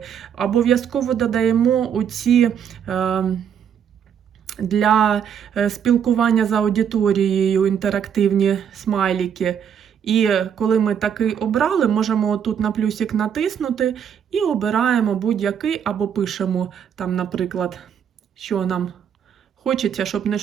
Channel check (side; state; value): left; quieter; 8.2 dB